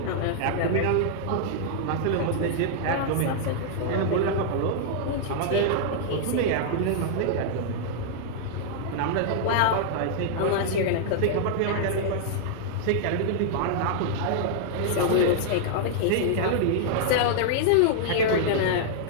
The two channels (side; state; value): both; different; correlation -0.01